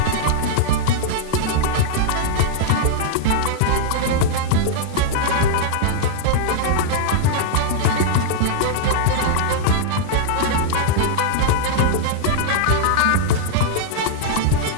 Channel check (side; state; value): both; different; correlation -0.01